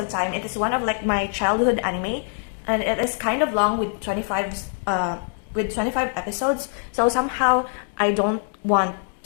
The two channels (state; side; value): silent; right; digital silence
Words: time. It is one of like my childhood anime, and it is kind of long with 25 episodes. So somehow I don't want